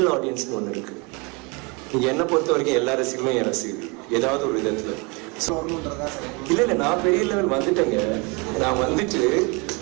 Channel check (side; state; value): left; quieter; 29.6 dB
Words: ஆடியன்ஸ்னு ஒன்று இருக்கு. நீங்க என்ன பொறுத்த வரைக்கும் எல்லா ரசிகர்களும் என் ரசிகர்கள் ஏதாவது ஒரு விதத்துல. இல்ல நான் பெரிய லெவல் வந்துட்டேங்க.